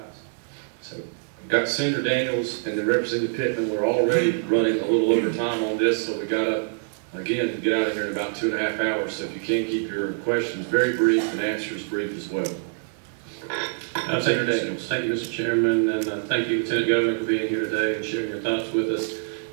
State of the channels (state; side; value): silent; left; digital silence